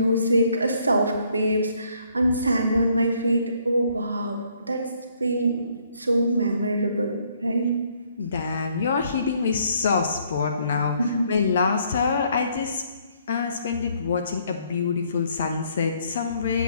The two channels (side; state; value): both; inverted; correlation -0.67